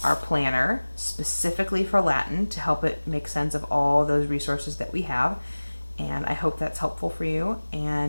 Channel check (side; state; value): both; inverted; correlation -1.00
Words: our planner specifically for Latin to help it make sense of all those resources that we have. And I hope that's helpful for you,